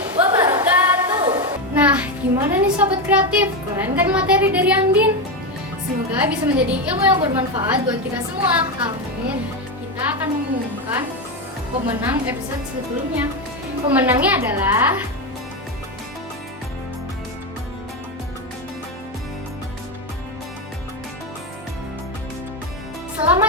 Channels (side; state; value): both; normal; correlation 0.11